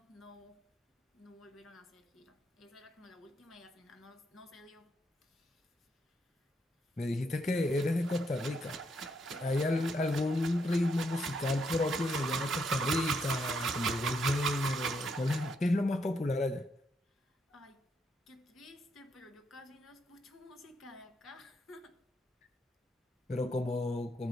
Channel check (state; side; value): normal; both; correlation 0.77